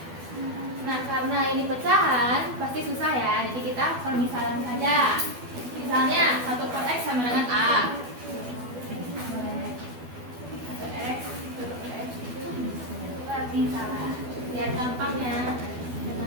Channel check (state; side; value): late; left; 12 ms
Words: Nah, karena ini pecahan pasti susah ya, jadi kita permisalan saja. Misalnya 1 per x sama dengan a. Berarti salah. Lihat gampangnya.